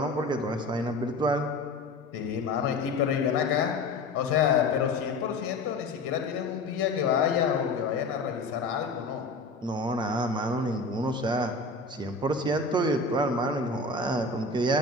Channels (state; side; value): quieter; right; 3.0 dB